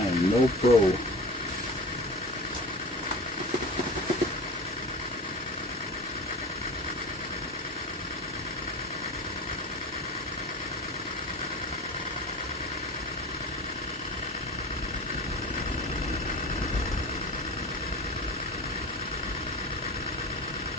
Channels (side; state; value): both; normal; correlation 0.34